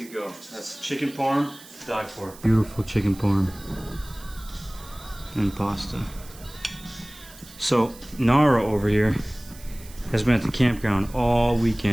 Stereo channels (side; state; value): right; noise; hiss, 20 dB below the sound